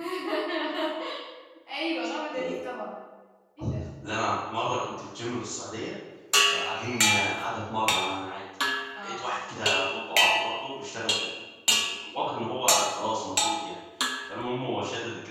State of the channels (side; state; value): both; identical; correlation 1.00